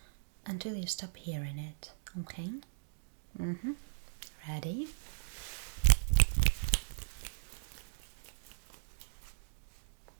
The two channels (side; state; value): left; silent; digital silence